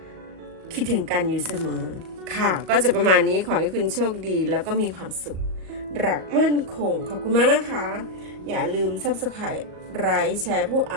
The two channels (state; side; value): late; left; 38 ms